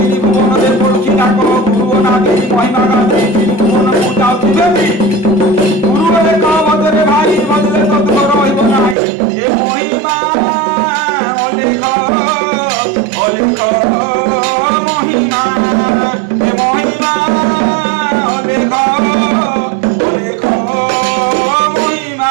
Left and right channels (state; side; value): drops out; left; at 9.0 s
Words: ভুবনদের পড়ুছি ডাক গুরু নাকি মহিমা গাছে তিনি ভুবন যাচ্ছি দেবী গুরু অলেখ বদলে ভাই বদলে তত রহিব নাই এ মহিমা অলেখ অলেখ মহিমা এ মহিমা অলেখ অলেখ মহিমা